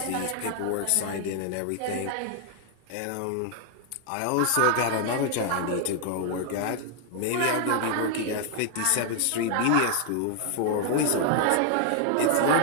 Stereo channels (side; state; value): both; different; correlation 0.00